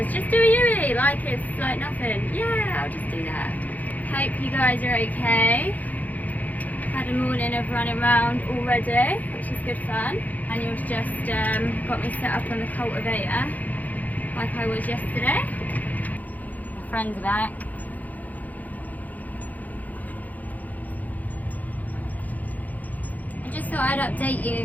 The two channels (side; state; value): right; late; 0.080 ms